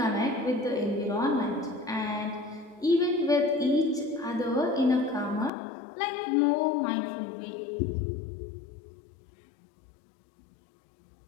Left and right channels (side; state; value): right; drops out; at 5.5 s